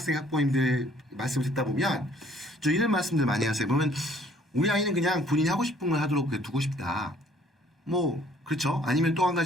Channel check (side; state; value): both; normal; correlation 0.59